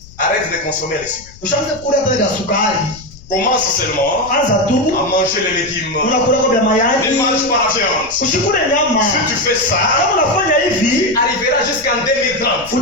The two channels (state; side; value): noise; left; rumble, 21 dB below the sound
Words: arrête de consommer les sucres. ushaanza kula hata ya sukari. Commence seulement anza tu à manger les légumes. unakula kwa vya Ne mayai, mange pas la viande. usikule nyama. Si tu fais ça, Kama unafanya hivi, arrivera jusqu'en 2030.